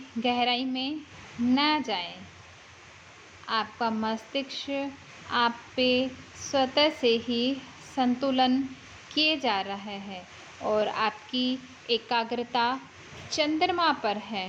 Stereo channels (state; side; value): identical; both; correlation 1.00